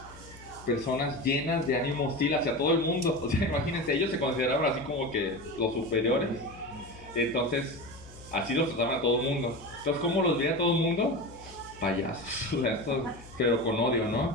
personas llenas de ánimo hostil hacia todo el mundo. O sea, imagínense, ellos se consideraban así como que los superiores. Entonces, así los trataban a todo el mundo. Entonces, ¿cómo los veía todo el mundo? Payasos, pero con odio,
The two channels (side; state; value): left; noise; hum, 20 dB below the sound